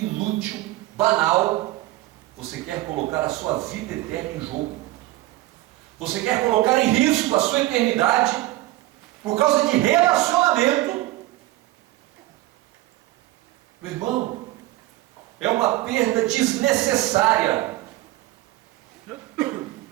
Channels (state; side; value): quieter; left; 17.5 dB